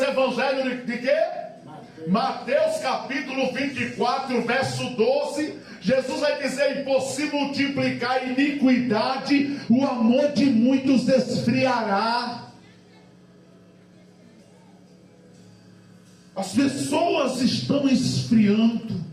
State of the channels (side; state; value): both; identical; correlation 1.00